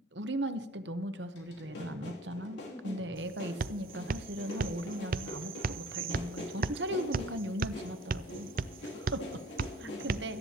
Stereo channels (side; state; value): both; normal; correlation 0.51